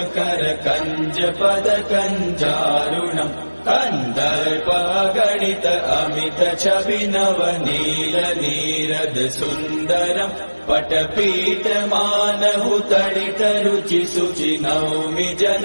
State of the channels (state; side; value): inverted; both; correlation -1.00